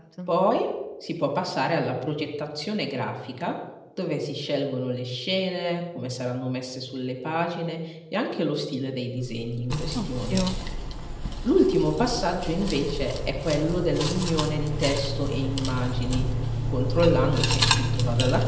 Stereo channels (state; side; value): identical; both; correlation 1.00